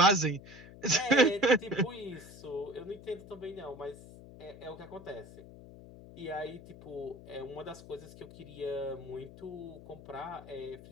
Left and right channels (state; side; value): noise; left; hum, 17 dB below the sound